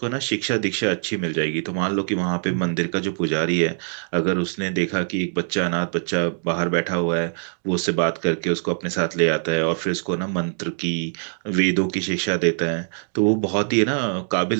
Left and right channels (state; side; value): silent; left; digital silence